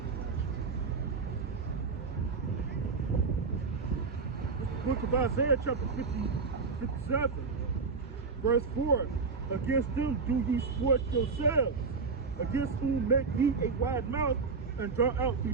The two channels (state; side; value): quieter; left; 4.7 dB